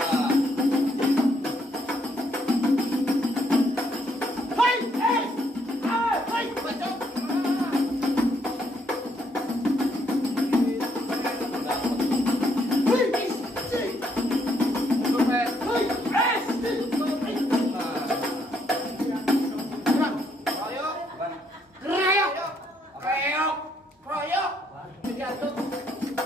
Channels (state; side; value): normal; both; correlation 0.72